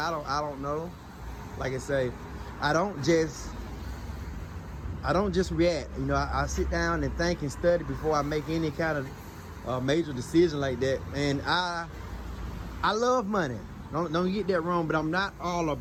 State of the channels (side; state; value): both; identical; correlation 1.00